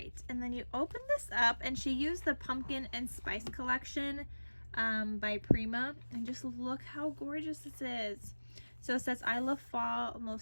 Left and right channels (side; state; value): both; inverted; correlation -1.00